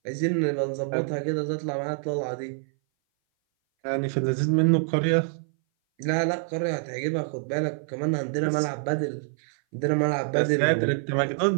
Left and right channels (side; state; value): left; silent; 58 dB below the other